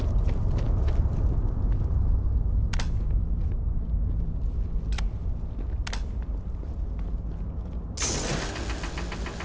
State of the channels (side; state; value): both; identical; correlation 1.00